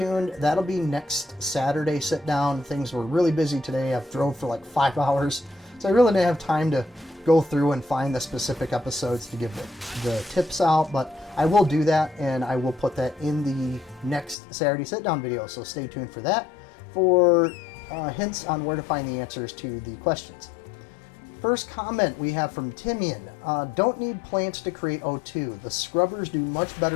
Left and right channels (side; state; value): right; drops out; at 14.4 s